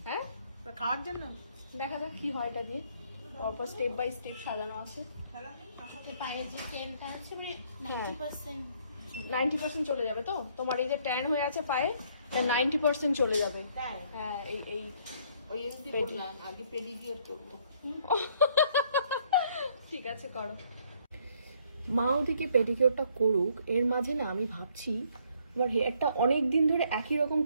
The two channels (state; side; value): inverted; both; correlation -0.65